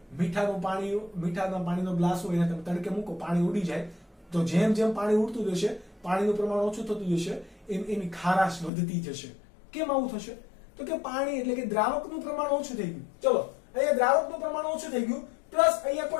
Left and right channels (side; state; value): right; drops out; at 8.7 s